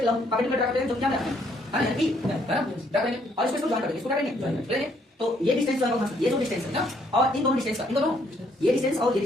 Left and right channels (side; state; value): both; normal; correlation 0.68